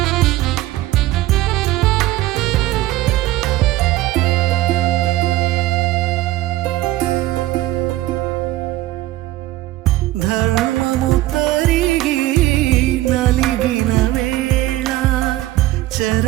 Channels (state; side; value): quieter; left; 16.3 dB